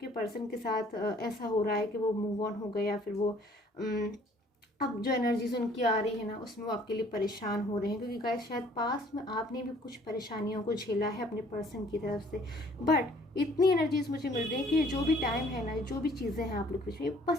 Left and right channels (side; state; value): both; normal; correlation 0.58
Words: पर्सन के साथ ऐसा हो रहा है कि वो मूव ऑन हो गए या फिर वो अब जो एनर्जीज उनकी आ रही है ना उसमें वो आपके लिए परेशान हो रहे हैं। क्योंकि गाइस शायद पास में आपने भी कुछ परेशानियों को झेला है अपने पर्सन की तरफ से। बट इतनी एनर्जीज मुझे मिल रही है कि जो भी टाइम है ना, जो भी चीज़ें हैं आप लोग के बीच में,